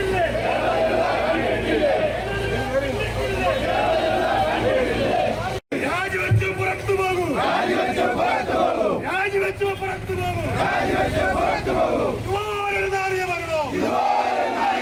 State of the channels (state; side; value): identical; both; correlation 1.00